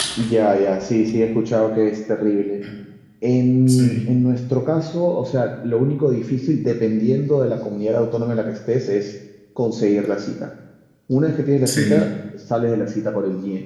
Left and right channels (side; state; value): both; identical; correlation 1.00